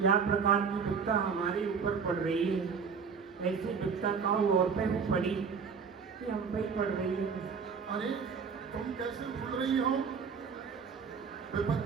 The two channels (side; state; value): left; quieter; 6.0 dB